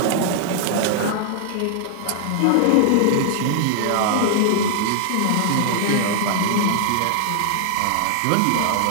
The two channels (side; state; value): both; different; correlation 0.00